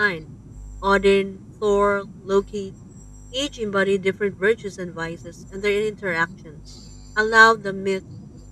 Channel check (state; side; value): identical; both; correlation 1.00